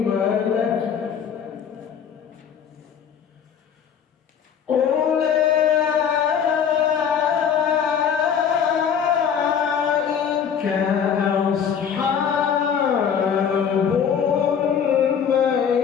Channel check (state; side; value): quieter; right; 7.7 dB